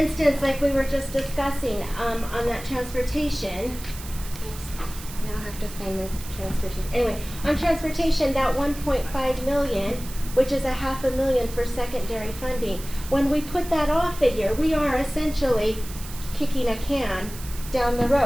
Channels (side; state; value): right; noise; hiss, 14 dB below the sound